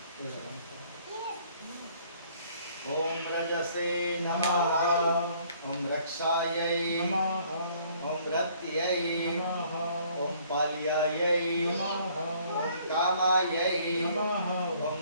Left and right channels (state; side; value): inverted; both; correlation -0.60